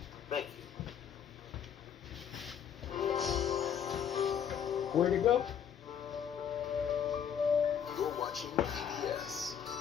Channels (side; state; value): right; quieter; 8.3 dB